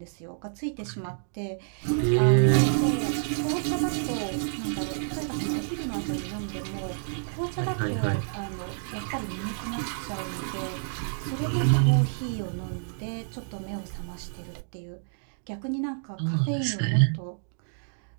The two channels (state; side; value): silent; left; digital silence